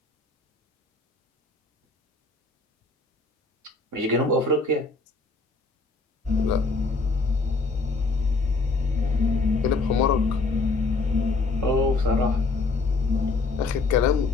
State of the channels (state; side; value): quieter; right; 3.6 dB